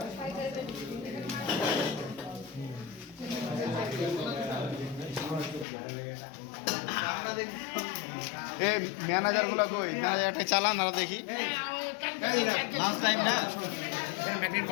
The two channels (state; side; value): drops out; right; at 5.7 s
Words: এই ম্যানেজারগুলো কই? ম্যানেজারটা চালান আর দেখি।